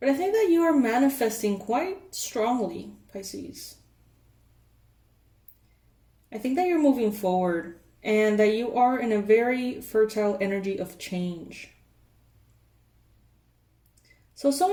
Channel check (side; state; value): both; identical; correlation 1.00